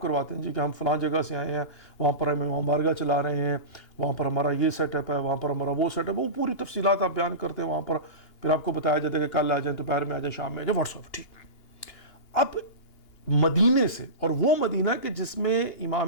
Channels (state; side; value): late; right; 2.8 ms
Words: کرواتے ہیں جی کہ ہم فلاں جگہ سے آئے ہیں، وہاں پر ہم امام بارگاہ چلا رہے ہیں، وہاں پر ہمارا یہ سیٹ اپ ہے، وہاں پر ہمارا وہ سیٹ اپ ہے. وہ پوری تفصیلات آپ بیان کرتے ہیں وہاں پر. پھر آپ کو بتایا جاتا ہے کہ کل آ جائیں، دوپہر میں آ جائیں، شام میں آ جائیں، واٹس ایپ. ٹھیک. اب مدینے سے، اور وہ مدینہ کہ جس میں